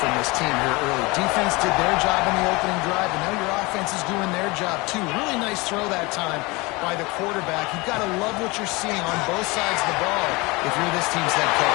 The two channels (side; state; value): right; quieter; 24.4 dB